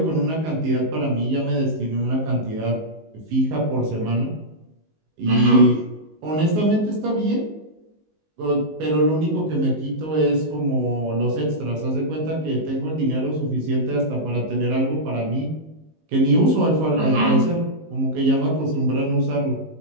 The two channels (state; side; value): late; left; 19 ms